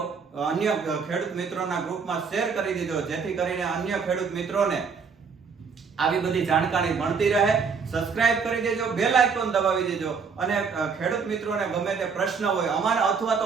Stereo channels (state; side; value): quieter; left; 5.6 dB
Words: અન્ય ખેડૂત મિત્રોના ગ્રુપમાં શેર કરી દીધો, જેથી કરીને અન્ય ખેડૂત મિત્રોને આવી બધી જાણકારી મળતી રહે. સબસ્ક્રાઇબ કરી દેજો, બેલ આઇકોન દબાવી દેજો, અને ખેડૂત મિત્રોને ગમે તે પ્રશ્ન હોય અમારા અથવા તો